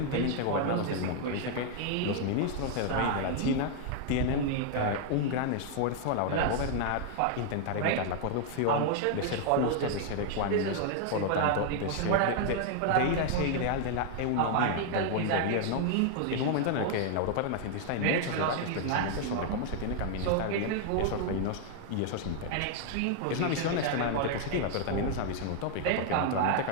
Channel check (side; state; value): both; different; correlation 0.00